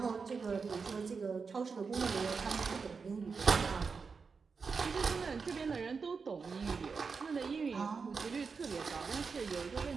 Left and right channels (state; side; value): quieter; left; 5.1 dB